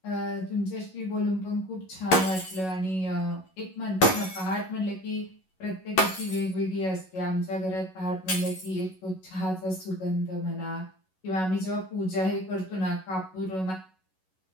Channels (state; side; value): late; right; 11 ms